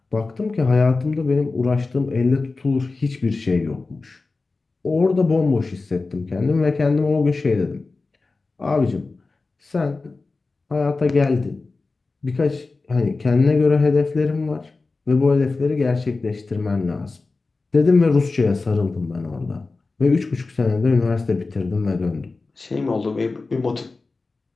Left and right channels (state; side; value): quieter; right; 3.7 dB